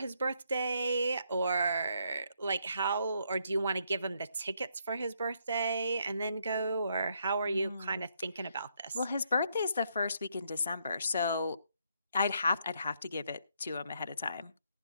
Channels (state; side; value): inverted; both; correlation -0.74